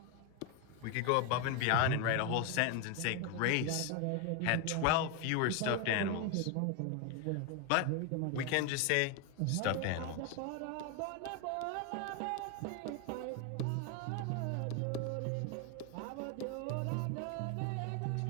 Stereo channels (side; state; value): both; different; correlation 0.01